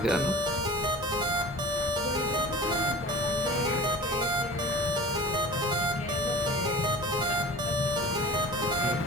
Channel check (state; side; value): normal; both; correlation 0.38